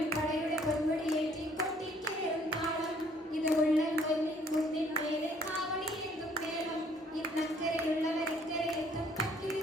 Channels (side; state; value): both; normal; correlation 0.62